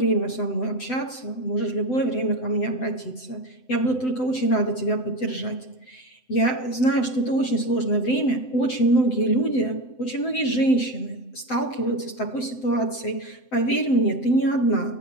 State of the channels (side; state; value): right; late; 7.8 ms